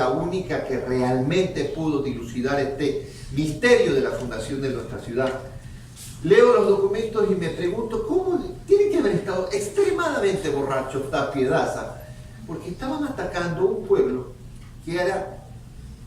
única que realmente pudo dilucidar este misterio de la fundación de nuestra ciudad. Leo los documentos y me pregunto cómo tienen que haber estado extremadamente borrachos Tapia y Daza, porque estaban atacando un pueblo que era,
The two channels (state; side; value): identical; both; correlation 1.00